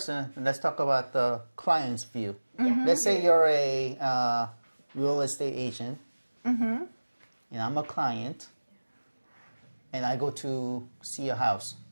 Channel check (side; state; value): both; inverted; correlation -1.00